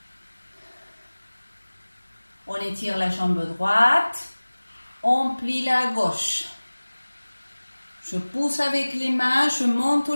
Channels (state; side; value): inverted; both; correlation -1.00